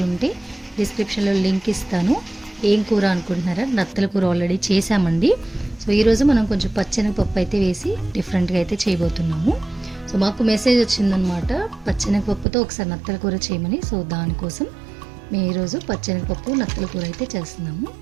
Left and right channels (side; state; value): left; drops out; at 12.5 s